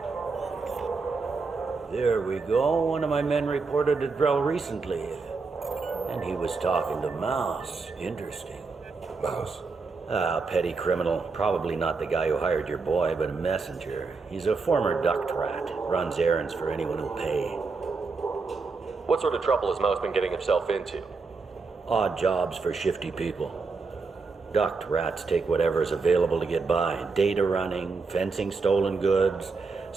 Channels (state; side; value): quieter; left; 4.4 dB